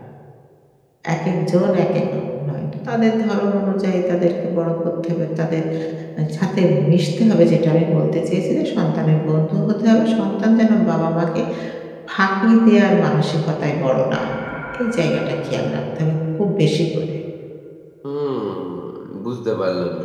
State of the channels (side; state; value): both; identical; correlation 1.00